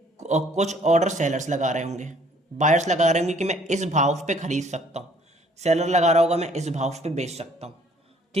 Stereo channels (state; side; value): normal; both; correlation 0.60